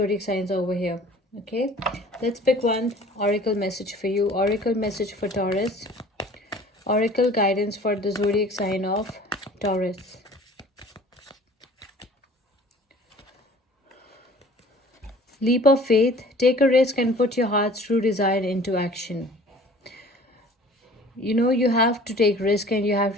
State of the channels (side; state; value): both; normal; correlation 0.48